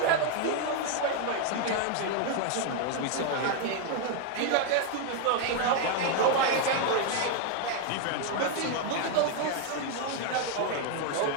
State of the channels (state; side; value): different; both; correlation 0.00